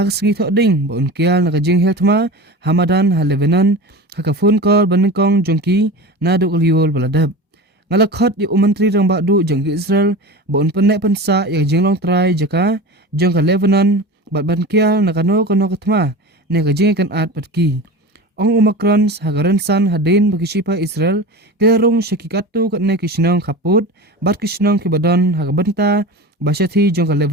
sengi tok ding ba unkial na kajing heltma Hamadan ha Lebanon haka phone call banengkong jongki na du liol baladab ngalakhot menteri rambak du jang ke Israel ba un penek pensa ya jinglong trai jaka jang ke Lebanon ba bankial na kano ketma ne kajing kan at patki Ong Macron hagaran san hadin bagi sipa Israel kerong syakikatu katne kisnong kaput bat kisnong kibadan hagabanta basyati jong ka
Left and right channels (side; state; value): both; normal; correlation 0.31